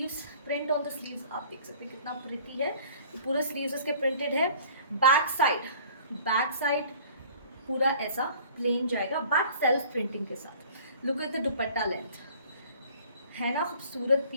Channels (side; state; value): both; inverted; correlation -0.50